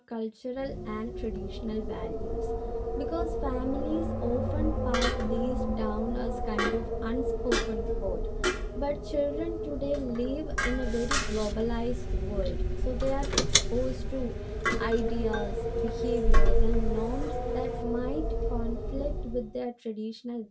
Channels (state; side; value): identical; both; correlation 1.00